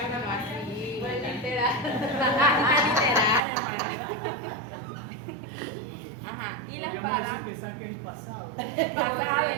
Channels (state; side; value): drops out; left; at 3.4 s